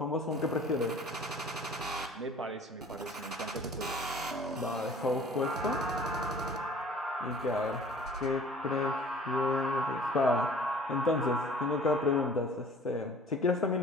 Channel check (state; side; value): normal; both; correlation 0.49